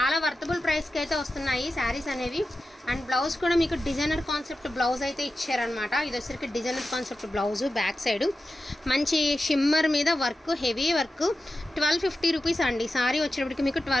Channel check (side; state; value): both; normal; correlation 0.92